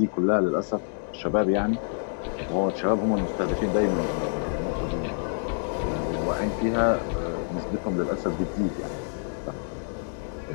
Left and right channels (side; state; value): right; silent; digital silence